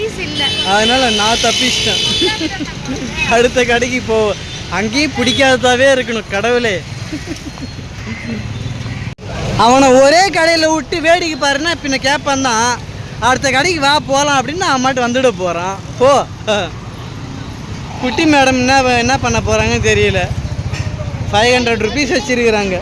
அதனால் நான் தப்பிச்சிட்டேன். அடுத்த கடைக்கு அங்கேயும் பிடிக்காததாவே இருக்கணும். கடவுளே, அவனை ஒரே கடையில் விட்டு வேடிக்கை பாருன்னா பின்ன கேட்பான் தான். அடுத்த கடைக்கு வா போகலாம் அப்படின்னு நான் மட்டும் வந்துட போகிறான். போ. குட்டி மேடம் என்ன பண்ண போகிறாங்கன்னு தெரியல. 500 rupees வச்சுருக்குறாங்க.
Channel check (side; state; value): both; identical; correlation 1.00